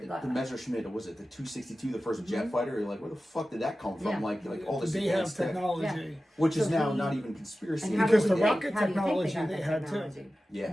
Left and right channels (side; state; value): both; normal; correlation 0.94